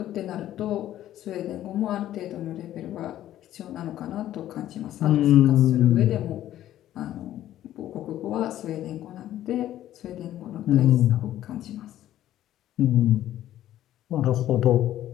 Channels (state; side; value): quieter; right; 12.8 dB